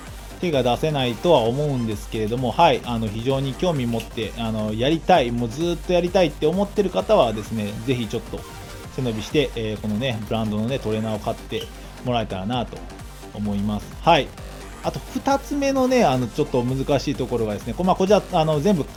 手が出せないとは思うんですけれども、はい、非常に興味持ってやりたい、もうずっとやりたいって思ってる方はですね、ぜひちょっと背伸びして、このね、ブランドのね、トレーナーを買ってもらえたらなと思います。はい。あと2つ目のね、ちょっと難しいところがですね、こちら全部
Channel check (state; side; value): identical; both; correlation 1.00